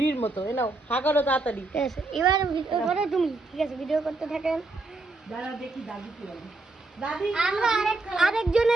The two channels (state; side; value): quieter; left; 3.2 dB